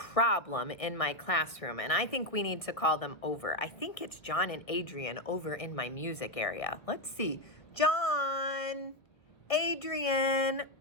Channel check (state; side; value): late; right; 1.3 ms